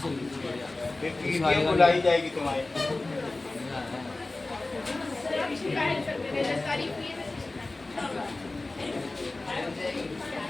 फिर वीडियो बुलाई जाएगी तुम्हारी।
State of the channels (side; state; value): right; quieter; 3.1 dB